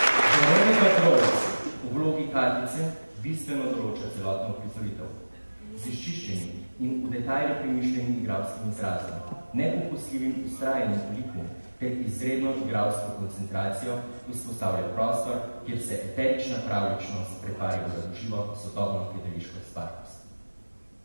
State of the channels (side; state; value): both; inverted; correlation -1.00